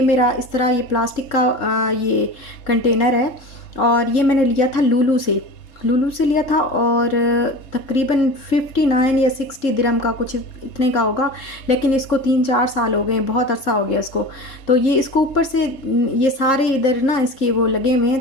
मेरा इस तरह ये प्लास्टिक का ये कंटेनर है और ये मैंने लिया था लूलू से लिया था, और तकरीबन 59 या 60 दिरहम का कुछ इतने का होगा। लेकिन इसको 3-4 साल हो गए, बहुत अरसा हो गया इसको। तो ये इसको ऊपर से ये सारे इधर ना इसके वो लगे हुए हैं,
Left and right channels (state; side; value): late; right; 3.6 ms